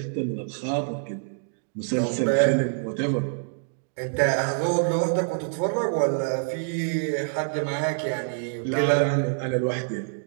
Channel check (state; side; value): silent; left; digital silence